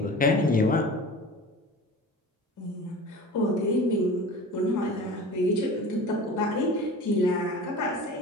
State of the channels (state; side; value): normal; both; correlation 0.37